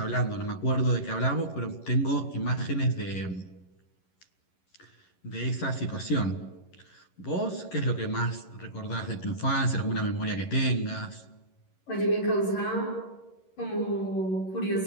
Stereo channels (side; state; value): right; late; 11 ms